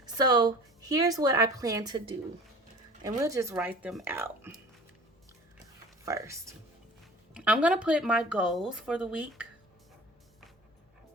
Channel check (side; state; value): both; normal; correlation 0.43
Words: so here's what I plan to do. And we'll just write them out first. I'm gonna put my goals for the week